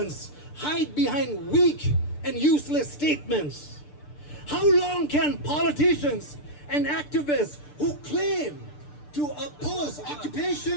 hide behind weak and useless statements? How long can politicians and activists who claim to oppose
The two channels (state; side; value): late; right; 6.8 ms